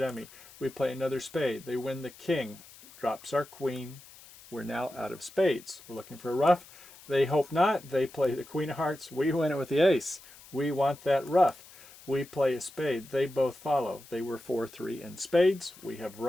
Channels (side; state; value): left; noise; hiss, 21 dB below the sound